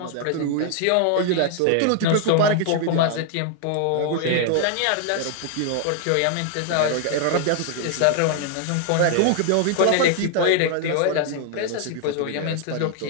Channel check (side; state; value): both; different; correlation 0.00